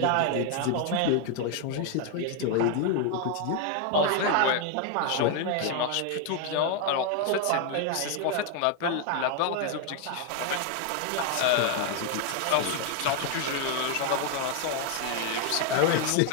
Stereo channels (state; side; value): different; both; correlation 0.01